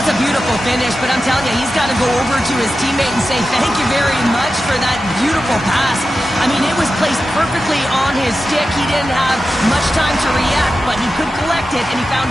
a beautiful finish, but I'm telling you, he's got to go over to his teammate and say thank you very much for that beautiful pass. I mean, it was placed perfectly on his stick. He didn't have much time to react, but he could collect it, and he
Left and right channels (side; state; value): both; normal; correlation 0.92